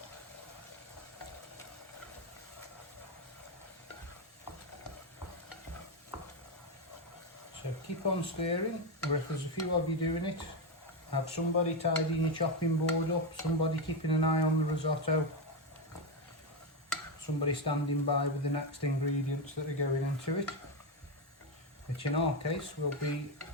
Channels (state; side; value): normal; both; correlation 0.09